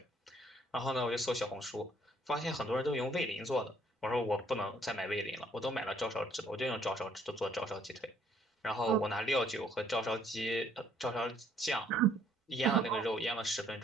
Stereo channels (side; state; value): both; normal; correlation 0.64